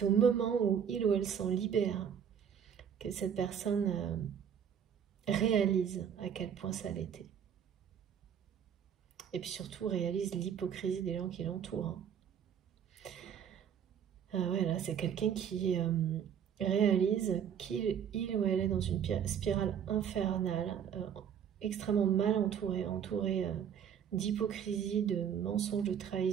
au moment où il ou elle s'en libère que cette personne réalise à quel point ça l'était. Et puis surtout réalise l'hypocrisie des gens qui l'entourent. Ouais, là, c'est quelqu'un qui réalise qu'il ou elle est dans une spirale infernale, extrêmement mal entourée d'hypocrisie, de mensonges, de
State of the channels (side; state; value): left; quieter; 8.3 dB